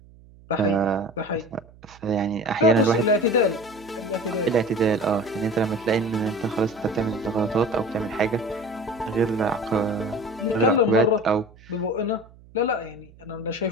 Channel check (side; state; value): right; noise; hum, 24 dB below the sound